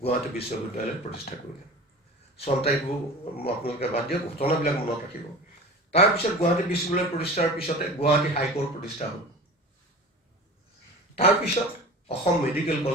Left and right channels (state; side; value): normal; both; correlation 0.37